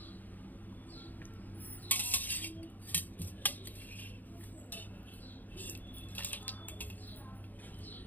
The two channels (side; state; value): right; late; 0.084 ms